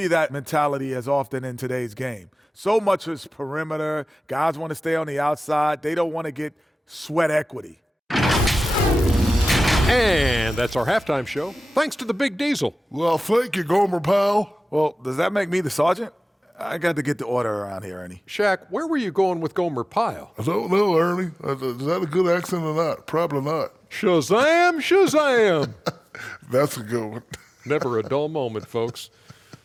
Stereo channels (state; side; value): normal; both; correlation 0.97